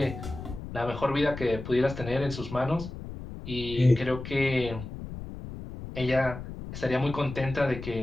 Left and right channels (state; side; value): noise; left; rumble, 10 dB below the sound